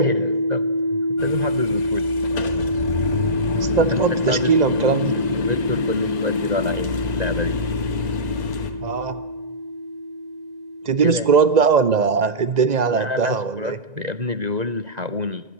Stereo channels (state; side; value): late; left; 1.9 ms